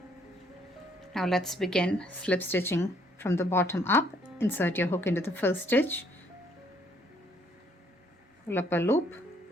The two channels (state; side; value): normal; both; correlation 0.66